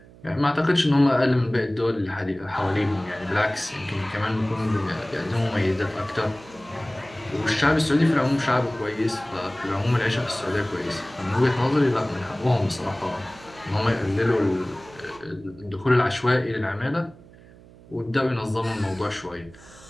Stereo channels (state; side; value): noise; right; hum, 22 dB below the sound